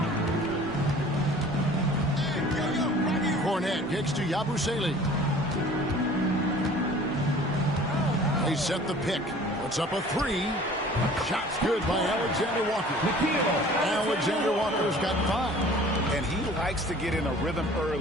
Cornette kicks to Yabusele. They set the pick. Puts up a 3. Shot's good by Alexander Walker. Alexander Walker's got 5. And he likes to get in a rhythm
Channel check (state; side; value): normal; both; correlation 0.48